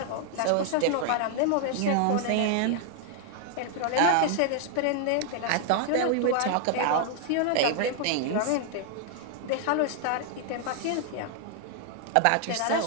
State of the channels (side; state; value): both; different; correlation 0.00